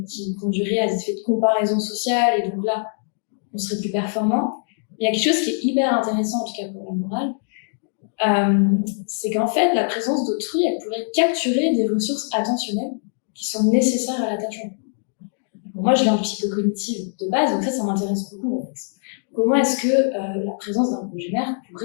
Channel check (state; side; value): silent; right; digital silence